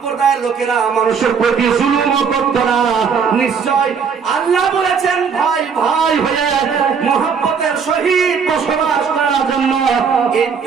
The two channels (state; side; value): quieter; left; 6.3 dB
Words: লোকেরা মানুষের প্রতি জুলুম করতো না। নিশ্চয় আল্লাহ বলেছেন, ভাই ভাই হয়ে মহব্বতের সহিত বসবাস করার জন্য এই